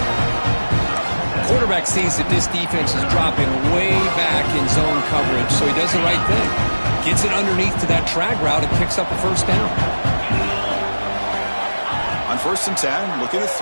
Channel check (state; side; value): inverted; both; correlation -1.00